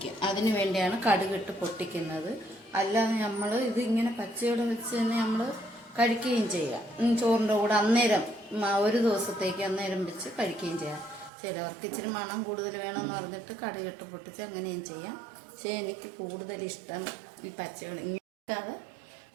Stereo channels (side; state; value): left; drops out; at 11.3 s